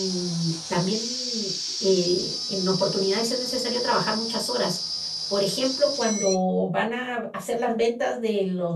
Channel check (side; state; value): both; identical; correlation 1.00